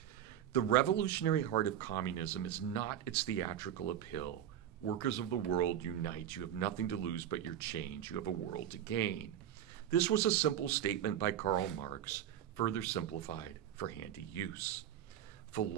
The revolutionary heart of communism is not its theatrical appeal. Workers of the world, unite. You have nothing to lose but your change. You have a world to gain. This was a simple statement by Karl Marx, further simplified for handy use.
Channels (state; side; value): quieter; left; 10.4 dB